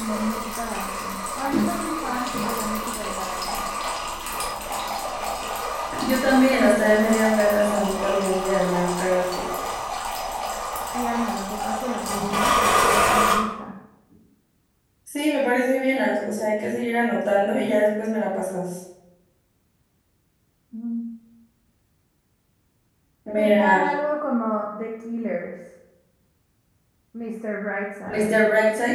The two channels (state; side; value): identical; both; correlation 1.00